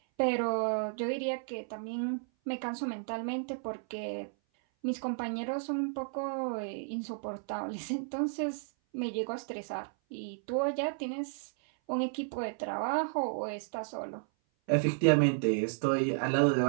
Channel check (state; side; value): silent; left; 56 dB below the other